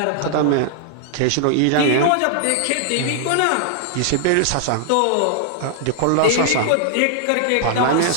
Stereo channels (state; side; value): different; both; correlation -0.01